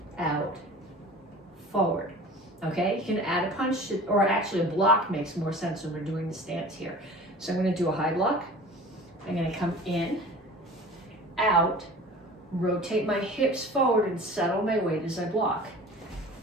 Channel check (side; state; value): both; normal; correlation 0.41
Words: out, forward. Okay, you can add a punch, or actually a block makes more sense when we're doing the stance here. So I'm gonna do a high block. I'm gonna come in, out, rotate my hips forward and settle my weight as I block.